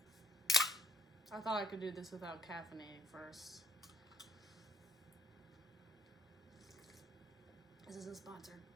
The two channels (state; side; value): normal; both; correlation 0.67